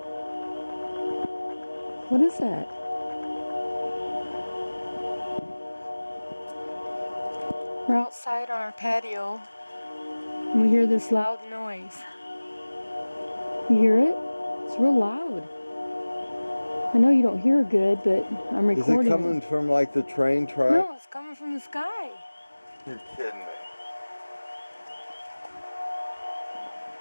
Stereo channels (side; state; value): both; inverted; correlation -1.00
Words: What is that? We're outside on our patio and we hear this loud noise. You hear it? It's real loud. I know you don't hear good, but I'm recording. Is it coming from like the train track? No, it's coming from the sky. You're kidding me.